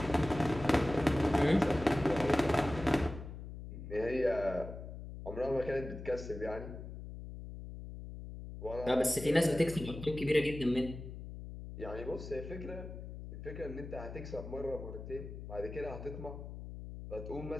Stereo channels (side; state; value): left; noise; hum, 10 dB below the sound